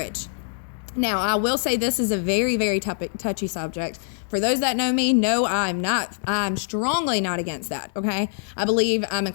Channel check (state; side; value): silent; right; digital silence